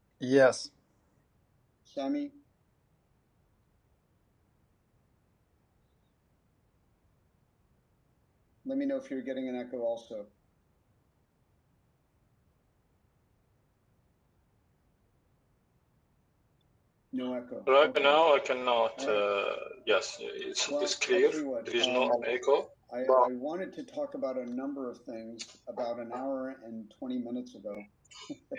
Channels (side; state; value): both; identical; correlation 1.00